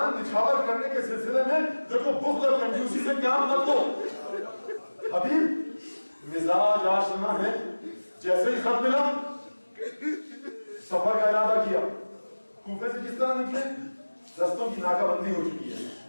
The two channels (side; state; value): both; inverted; correlation -1.00